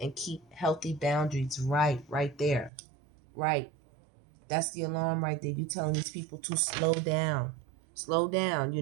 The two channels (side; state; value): left; drops out; at 2.7 s